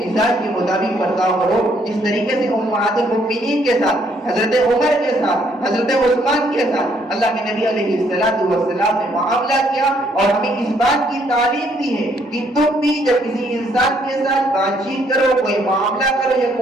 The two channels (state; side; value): normal; both; correlation 0.68